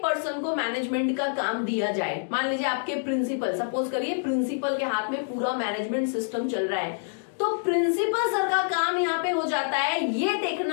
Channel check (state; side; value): silent; right; digital silence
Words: को मैनेजमेंट का काम दिया जाए, मान लीजिए आपके प्रिंसिपल, सपोज करिए प्रिंसिपल के हाथ में पूरा मैनेजमेंट सिस्टम चल रहा है, तो प्रिंसिपल सर का काम यहाँ पे हो जाता है ये